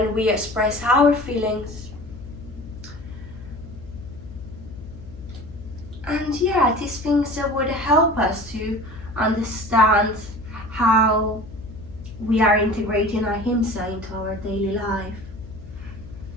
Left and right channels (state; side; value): noise; left; hum, 15 dB below the sound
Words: we express our feelings. And yeah, these things that would help us to understand how we are integrating ahimsa into our daily life.